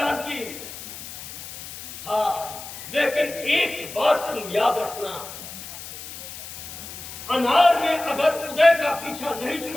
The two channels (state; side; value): noise; left; hiss, 12 dB below the sound